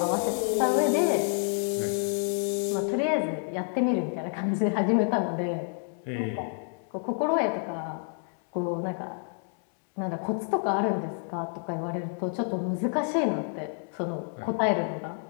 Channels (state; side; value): silent; right; 59 dB below the other